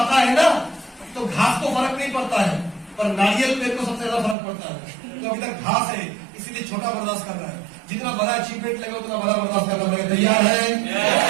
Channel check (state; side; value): drops out; left; at 4.4 s